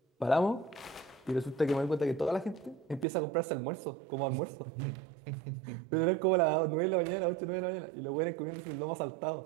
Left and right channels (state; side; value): drops out; left; at 3.1 s